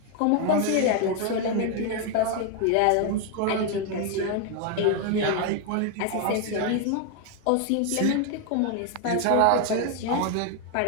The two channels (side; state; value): both; different; correlation 0.01